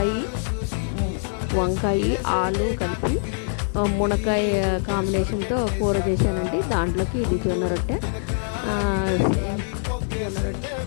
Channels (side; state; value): right; silent; digital silence